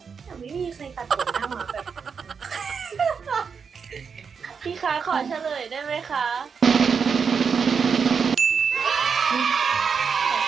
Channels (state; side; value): quieter; left; 6.1 dB